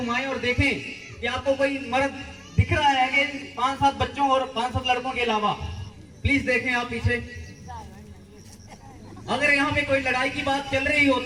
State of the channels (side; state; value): both; identical; correlation 1.00